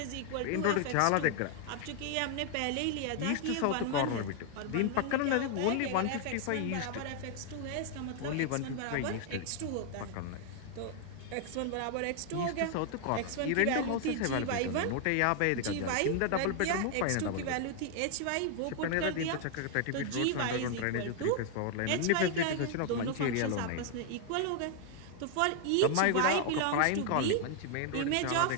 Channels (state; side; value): different; both; correlation 0.00